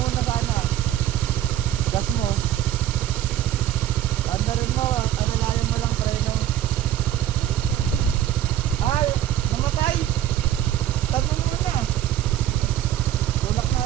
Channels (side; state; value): left; quieter; 11.7 dB